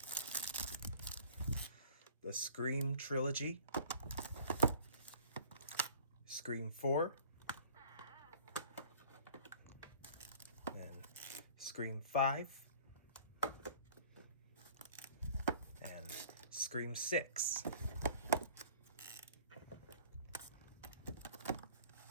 The Scream Trilogy. Scream 4, and Scream 5, and Scream 6.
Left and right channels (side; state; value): both; inverted; correlation -0.49